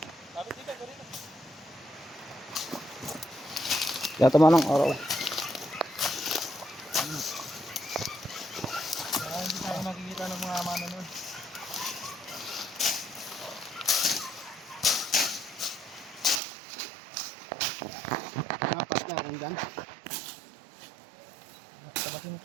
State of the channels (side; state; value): left; drops out; at 16.4 s